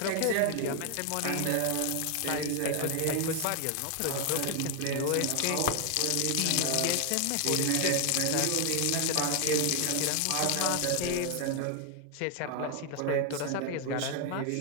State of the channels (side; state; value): both; different; correlation 0.00